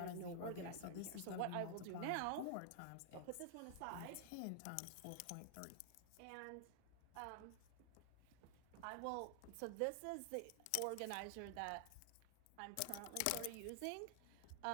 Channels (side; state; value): both; different; correlation 0.00